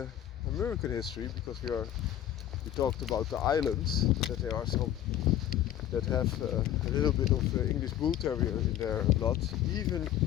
American history, because we talked about the islands, that there are some that have a little bit of English Bull Terrier in their blood. Even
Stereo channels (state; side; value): quieter; right; 11.8 dB